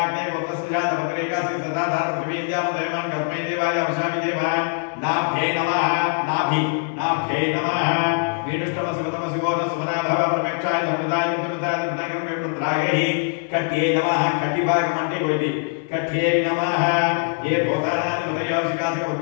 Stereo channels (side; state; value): right; silent; 59 dB below the other